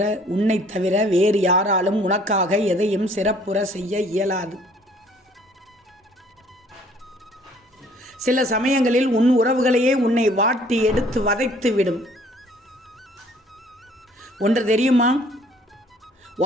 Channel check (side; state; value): both; normal; correlation 0.58